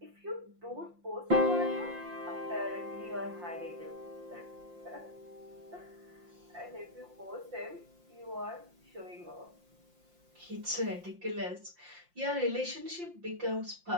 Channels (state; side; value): late; left; 5.7 ms